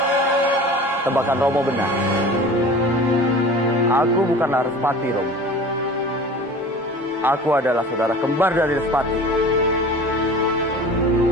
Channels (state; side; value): normal; both; correlation 0.40